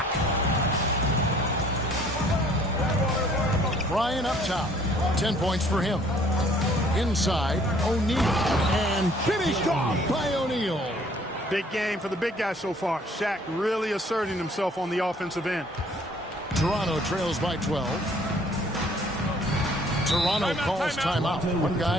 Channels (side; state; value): both; normal; correlation 0.58